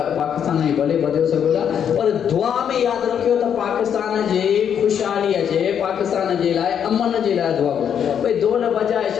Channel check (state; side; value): quieter; right; 8.4 dB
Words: जी भले ॿधियो सघो था पर दुआ में यादि रखियो त पाकिस्तान जी ख़ुशहाली अचे पाकिस्तान जे लाइ अमन जे लाइ दुआ कयो भई ढोल बजाए